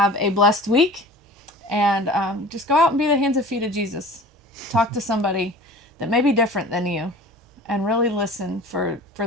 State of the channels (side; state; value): both; normal; correlation 0.42